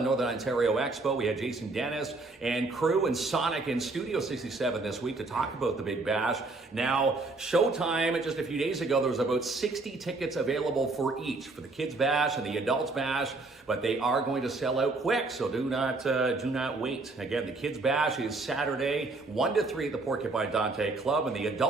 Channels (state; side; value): quieter; left; 3.4 dB